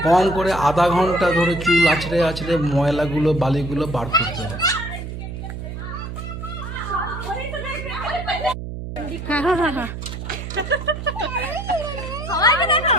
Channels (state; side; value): noise; right; hum, 8 dB below the sound